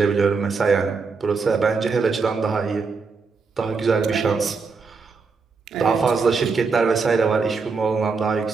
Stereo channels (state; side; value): quieter; left; 4.8 dB